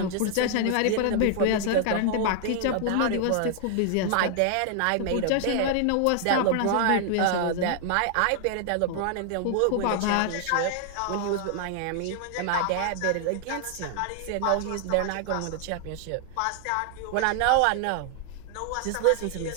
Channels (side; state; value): both; different; correlation 0.00